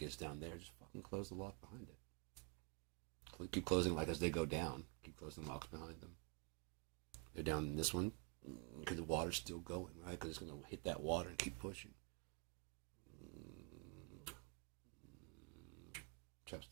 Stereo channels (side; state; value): left; quieter; 34.5 dB